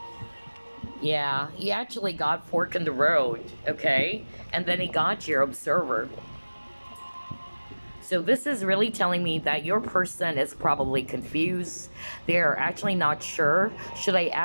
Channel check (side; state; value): both; inverted; correlation -1.00